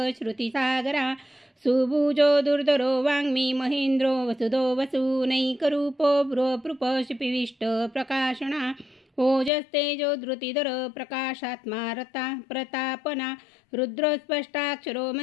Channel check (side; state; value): right; drops out; at 9.5 s